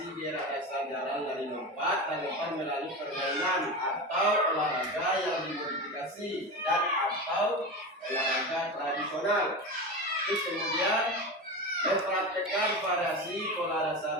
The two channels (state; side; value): normal; both; correlation 0.24